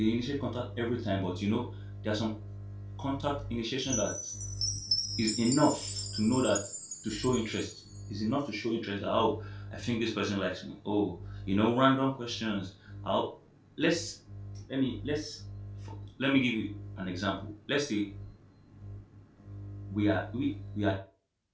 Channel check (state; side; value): identical; both; correlation 1.00